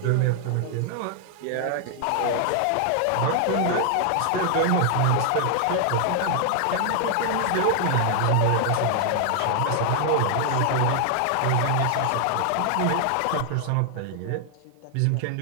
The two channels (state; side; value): different; both; correlation 0.00